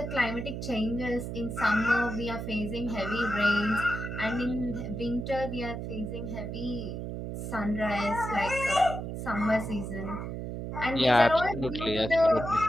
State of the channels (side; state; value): right; noise; hum, 6 dB below the sound